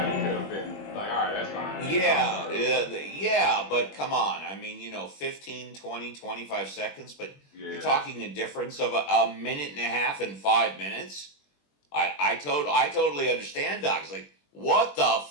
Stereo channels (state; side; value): late; right; 21 ms